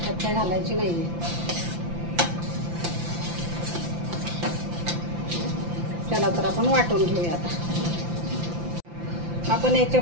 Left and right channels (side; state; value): left; late; 5.8 ms